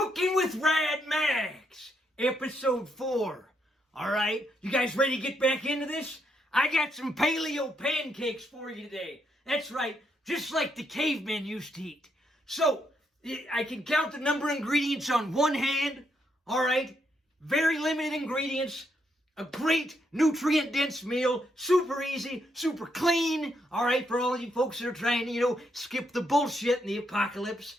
with Rad Max, episode 4. All right, you guys ready to get back into this? I got some paleo pancakes for you today. That's right, just like the cavemen used to eat. So, I can count the number of ingredients on one hand. All right, very limited ingredients. A great nutrient-dense meal, super easy, super clean, all right, for all you folks that are trying to, skip the bullshit in the apocalypse.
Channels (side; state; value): both; normal; correlation 0.77